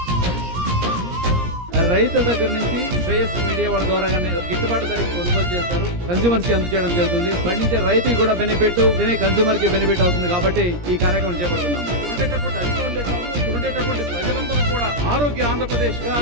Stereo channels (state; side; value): late; left; 17 ms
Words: రైతుల దగ్గర నుంచి శ్రేయస్ మీడియా వాళ్ళ ద్వారా గిట్టుబాటు ధరకి కొనుగోలు చేస్తారు, కన్స్యూమర్స్ కి అందజేయడం జరుగుతుంది. పండించే రైతుకి కూడా బెనిఫిట్, కన్స్యూమర్ కి బెనిఫిట్ అవుతుంది. కాబట్టి ఈ కార్యక్రమం చేపడుతున్నాము. ఉండేటటువంటి అధికారులే కాదు, ఉండేటటువంటి ప్రజలందరూ కూడా ఆరోగ్య ఆంధ్రప్రదేశ్ గా